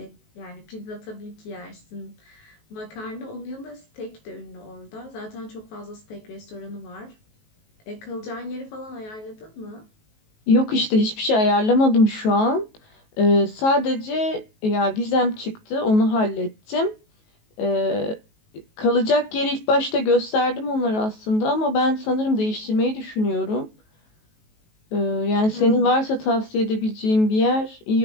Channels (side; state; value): right; late; 19 ms